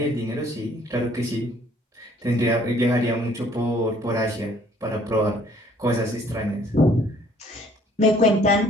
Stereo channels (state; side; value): normal; both; correlation 0.59